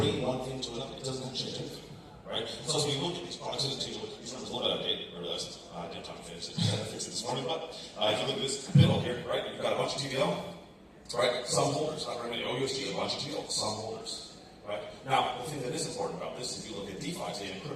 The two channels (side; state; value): both; identical; correlation 1.00